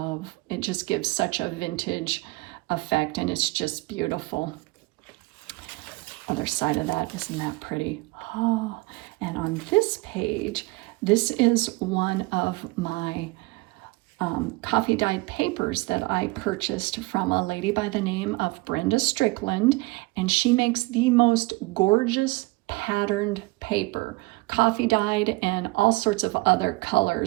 it just gives such a vintage effect, and it's just beautiful. Other side of that, isn't that pretty? Oh, and on this page, this is one of my coffee dyed papers that I purchased from a lady by the name of Brenda Strickland, and she makes the most gorgeous patterned paper, coffee dyed and all sorts of other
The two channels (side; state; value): left; quieter; 23.6 dB